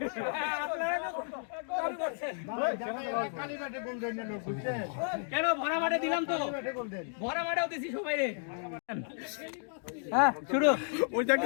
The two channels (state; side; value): silent; right; 56 dB below the other